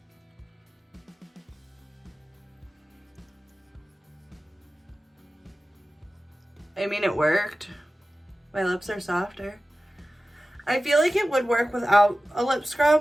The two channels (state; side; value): normal; both; correlation 0.95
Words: I mean, it worked. My lips are softer. I feel like it would work without a lip